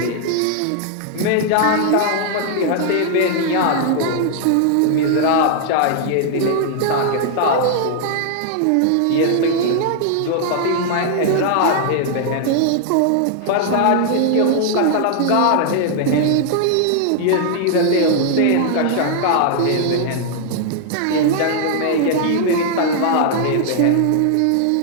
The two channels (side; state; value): both; different; correlation -0.01